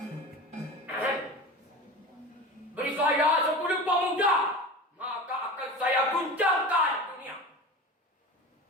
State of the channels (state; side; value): normal; both; correlation 0.31